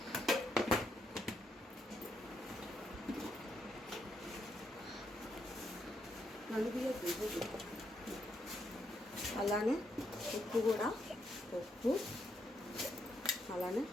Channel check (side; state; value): both; normal; correlation 0.78